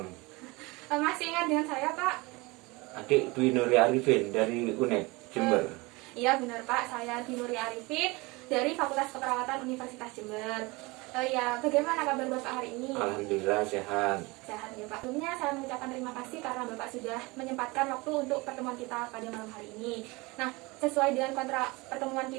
Masih ingat dengan saya Pak? Adik Dwi Nuria Arifin dari UNED Jember. Iya benar Pak, saya Dwi Nuria Arifin dari Fakultas Keperawatan Universitas Jember. Ya, bagaimana kabar Bapak hari ini? Alhamdulillah sehat. Sehat ya Pak. Sebelumnya saya mengucapkan terima kasih karena Bapak sudah menyempatkan waktu untuk pertemuan kita pada malam hari ini. Nah, sesuai dengan kontrak pertemuan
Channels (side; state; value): left; quieter; 24.4 dB